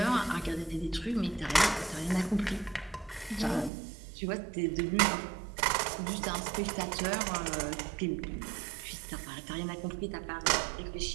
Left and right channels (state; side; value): drops out; left; at 3.7 s